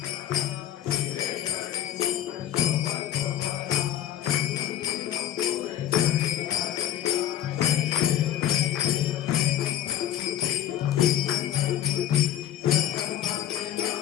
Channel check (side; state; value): right; quieter; 11.5 dB